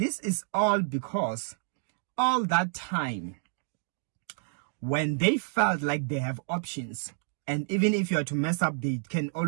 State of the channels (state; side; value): silent; left; digital silence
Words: is all because all that time, when they felt like they have options, and even if you are to mess up, they can